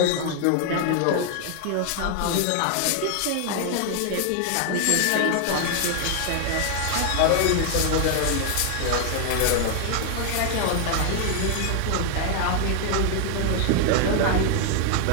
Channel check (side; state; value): both; different; correlation 0.00